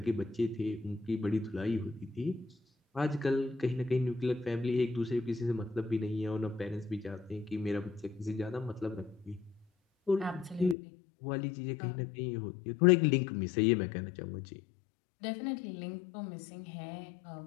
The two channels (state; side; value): drops out; right; at 10.8 s